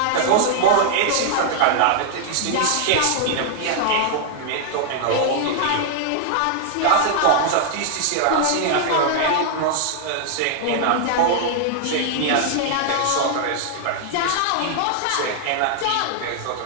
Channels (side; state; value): both; different; correlation 0.00